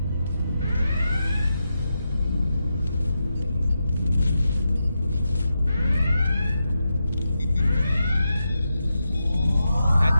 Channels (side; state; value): both; inverted; correlation -0.87